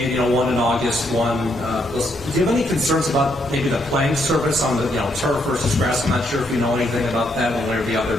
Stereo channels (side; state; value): both; normal; correlation 0.75